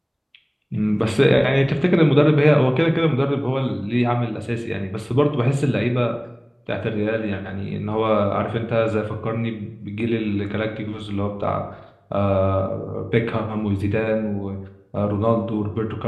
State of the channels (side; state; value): both; identical; correlation 1.00